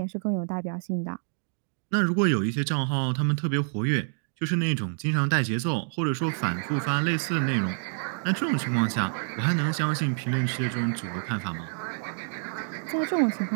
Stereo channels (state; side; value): silent; left; 59 dB below the other